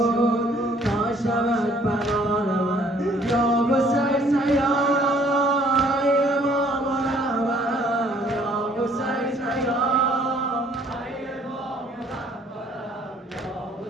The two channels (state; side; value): normal; both; correlation 0.60